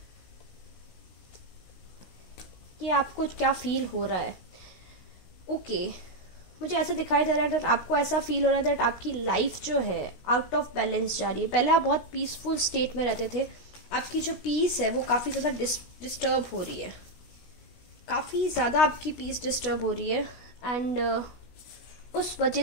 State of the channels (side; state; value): right; late; 16 ms